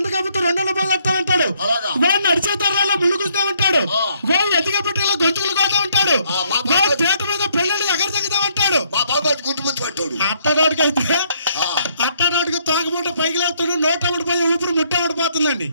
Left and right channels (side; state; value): both; inverted; correlation -0.69